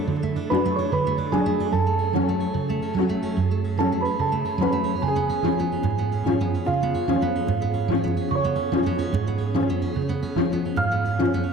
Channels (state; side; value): normal; both; correlation 0.57